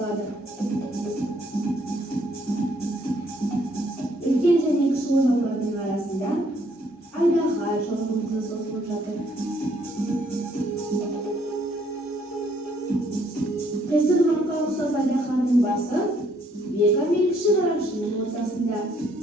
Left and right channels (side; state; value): both; normal; correlation 0.67